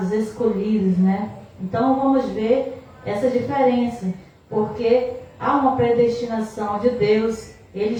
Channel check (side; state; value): both; identical; correlation 1.00